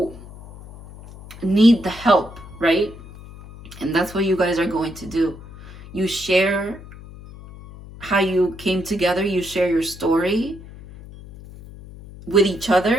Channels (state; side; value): noise; left; hum, 17 dB below the sound